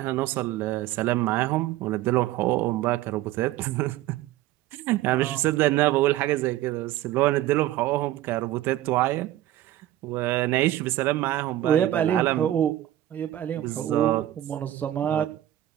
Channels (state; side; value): quieter; left; 13.9 dB